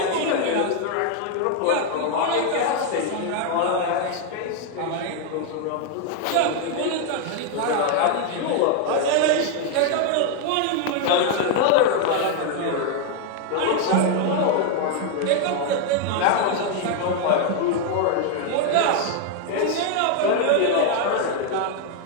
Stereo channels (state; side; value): different; both; correlation 0.00